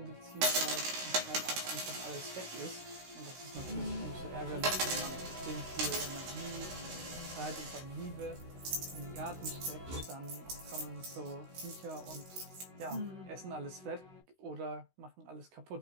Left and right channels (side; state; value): left; late; 16 ms